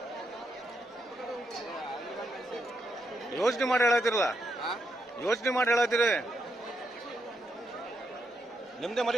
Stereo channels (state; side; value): normal; both; correlation 0.80